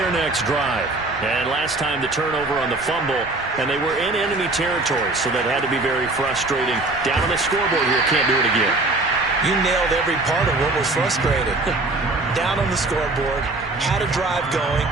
next drive. And last time the turnover on the fumble, and they were in enemy territory, so that had to be very frustrating. Down on the scoreboard here, can't do it again. You nailed every part of what was frustrating. Down on the scoreboard, had a drive going,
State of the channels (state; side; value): quieter; left; 3.0 dB